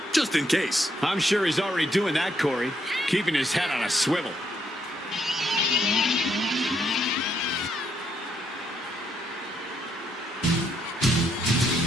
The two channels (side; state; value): both; normal; correlation 0.75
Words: just in case. I'm sure he's already doing that, Corey, keeping his head on a swivel.